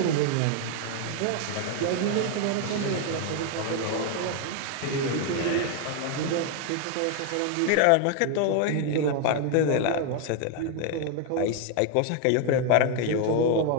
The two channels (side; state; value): both; different; correlation 0.01